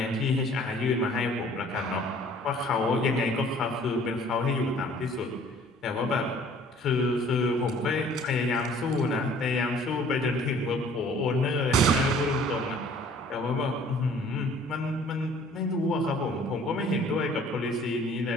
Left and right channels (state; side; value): normal; both; correlation 0.54